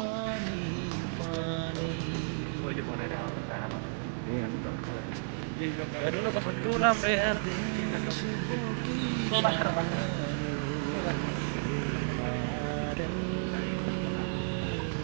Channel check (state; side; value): silent; left; digital silence